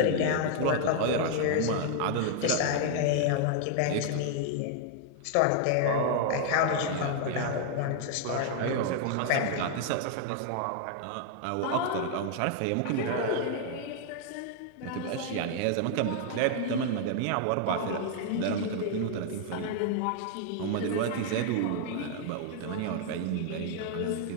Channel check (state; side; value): different; both; correlation 0.00